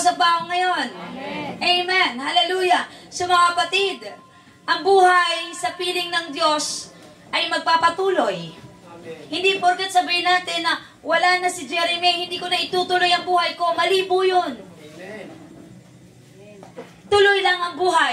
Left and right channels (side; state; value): both; identical; correlation 1.00